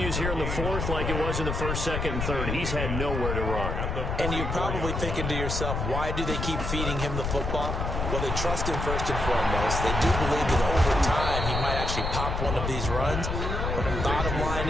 here in the fourth like it was in the first, second, and third. He's had nowhere to run. And you're probably thinking to yourself, why do they keep feeding him the football? Well, they trust him first and foremost. They do believe that over time he might actually pop one of these runs. But the bottom line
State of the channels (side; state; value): left; noise; rumble, 2 dB below the sound